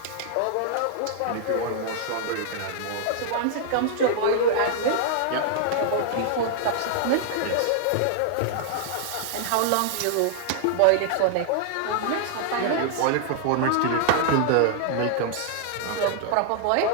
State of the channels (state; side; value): different; both; correlation -0.01